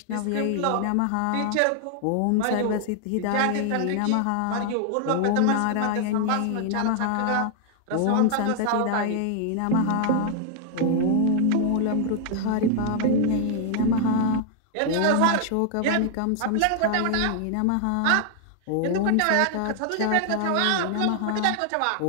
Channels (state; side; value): different; both; correlation 0.00